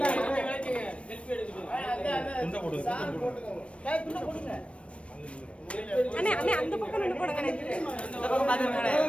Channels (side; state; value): right; late; 0.061 ms